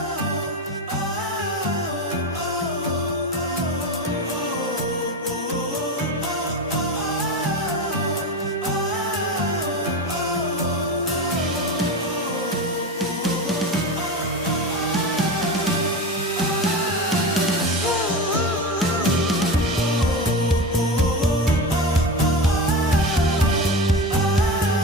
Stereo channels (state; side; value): normal; both; correlation 0.23